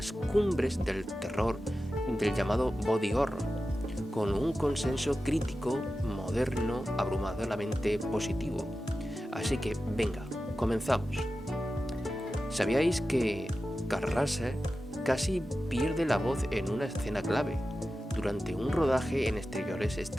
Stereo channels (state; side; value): normal; both; correlation 0.93